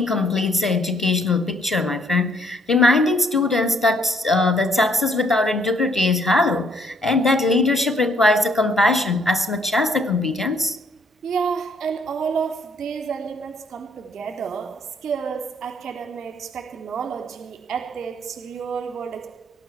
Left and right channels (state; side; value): normal; both; correlation 0.67